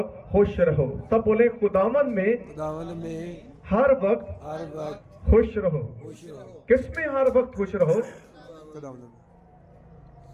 خوش رہو۔ سب بولے خداوند میں ہر وقت خوش رہو۔ کس میں ہر وقت خوش رہو؟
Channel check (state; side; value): identical; both; correlation 1.00